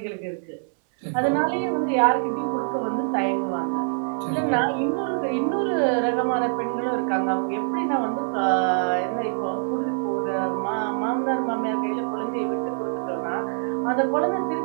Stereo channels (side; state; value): left; silent; 62 dB below the other